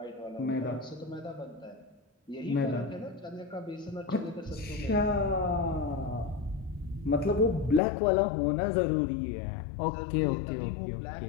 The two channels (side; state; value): right; drops out; at 7.8 s